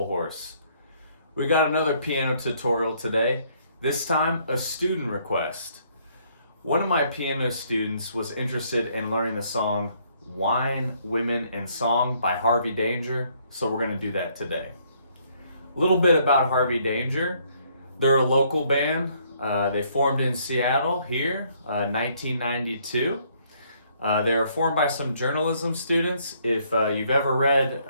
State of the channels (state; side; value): inverted; both; correlation -0.67